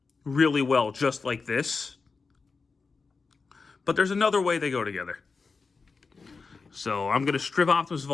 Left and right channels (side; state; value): right; quieter; 4.5 dB